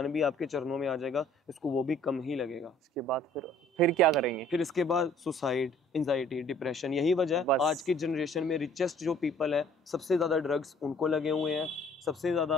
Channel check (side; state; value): both; normal; correlation 0.56